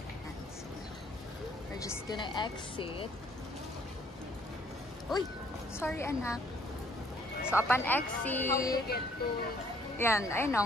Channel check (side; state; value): both; normal; correlation 0.63